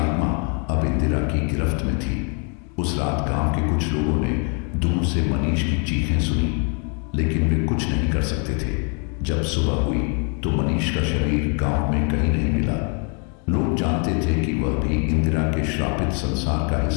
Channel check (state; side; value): quieter; right; 38.5 dB